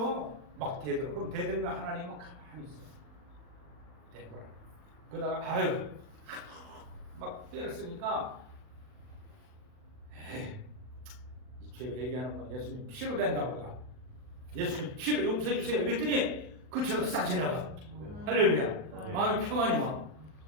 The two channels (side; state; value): left; late; 39 ms